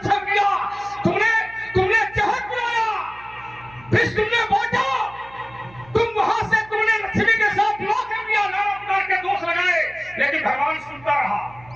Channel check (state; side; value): noise; right; hum, 24 dB below the sound